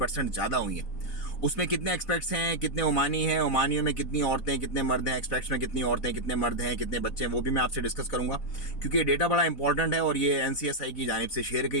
ज़्यादा हुई है। उसमें कितने एक्सपेक्ट्स हैं, कितने ओमानी हैं, ओमानियों में कितनी औरतें कितने मर्द हैं, एक्सपेक्ट्स में कितनी औरतें कितने मर्द हैं, कितने बच्चे हैं, वो भी मैं आपसे डिस्कस करूंगा क्योंकि ये डेटा बड़ा इंपॉर्टेंट है और ये NCSI की जानिब से शेयर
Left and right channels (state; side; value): late; right; 4.2 ms